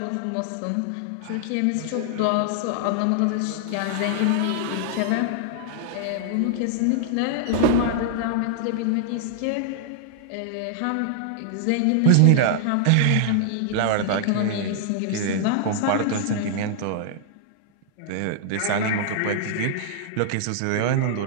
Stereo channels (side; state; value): both; different; correlation -0.01